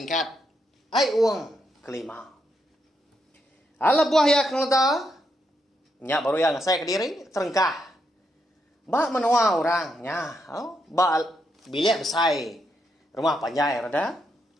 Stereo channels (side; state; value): both; normal; correlation 0.80